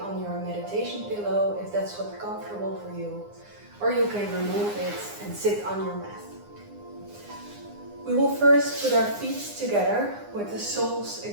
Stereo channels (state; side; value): late; left; 9.7 ms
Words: your meditation pillow if that's what's comfortable for you, or you can remove it and sit on your mat. We will first put our feet together with the soles